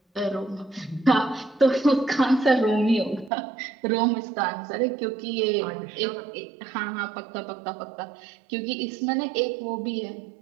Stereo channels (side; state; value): left; drops out; at 3.3 s